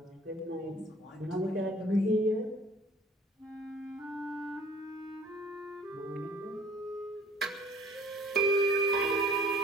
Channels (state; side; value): normal; both; correlation 0.52